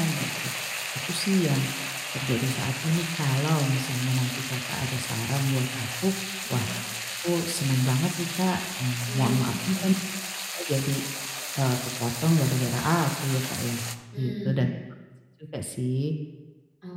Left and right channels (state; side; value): identical; both; correlation 1.00